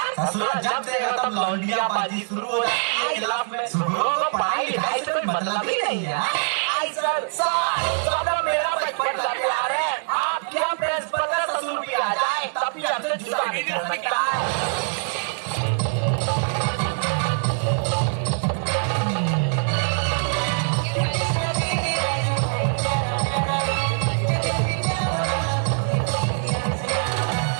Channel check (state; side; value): silent; left; 63 dB below the other